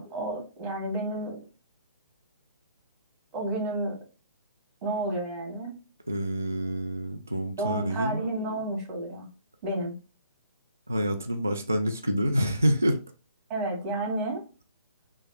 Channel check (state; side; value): inverted; both; correlation -0.67